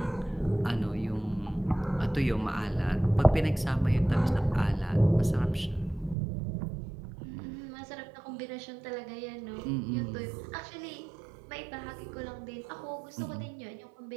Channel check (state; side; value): drops out; left; at 6.2 s